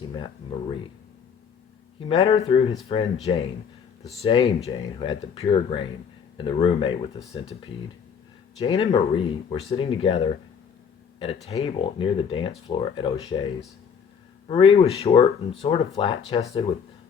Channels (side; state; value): right; quieter; 6.9 dB